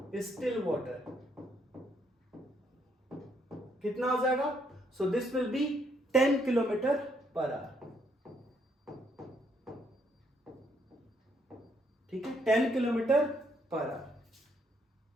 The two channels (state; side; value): normal; both; correlation 0.72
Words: still water कितना हो जाएगा, so this will B 10 kilometre per hour, ठीक है, 10 kilometre per hour